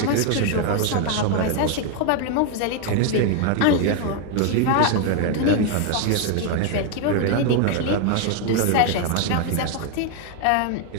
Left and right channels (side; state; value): both; different; correlation 0.01